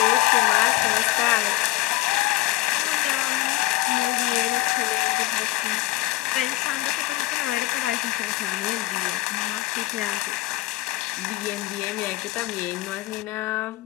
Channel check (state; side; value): quieter; right; 19.4 dB